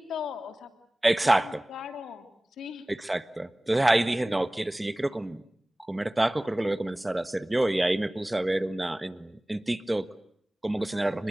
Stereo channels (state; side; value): normal; both; correlation 0.98